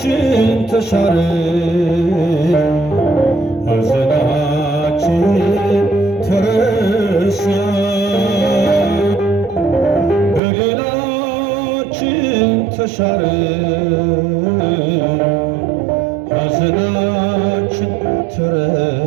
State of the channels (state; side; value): drops out; left; at 10.4 s